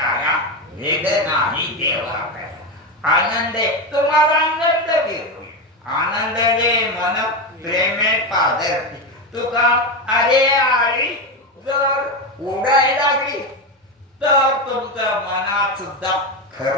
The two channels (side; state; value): both; normal; correlation 0.14